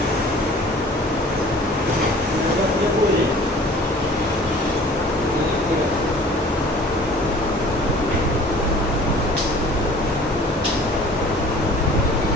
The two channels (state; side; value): normal; both; correlation 0.48